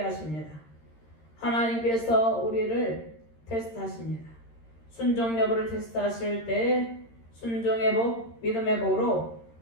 하십니다. 하나님께서 우리를 테스트하십니다. 순종 여부를 테스트하실 때 순종의 복, 믿음의 복으로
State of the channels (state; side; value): late; right; 13 ms